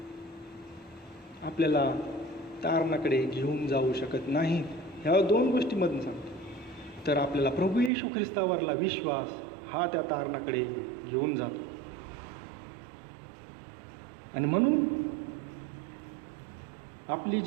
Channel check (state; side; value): drops out; left; at 7.9 s